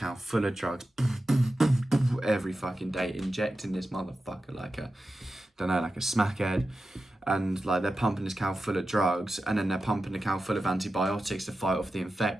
full of drugs every fucking day, injecting this motherfucker like a smackhead, and like they're pumping this cow full of drugs, and then they're pumping the cow full of antibiotics to fight off the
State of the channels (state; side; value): normal; both; correlation 0.92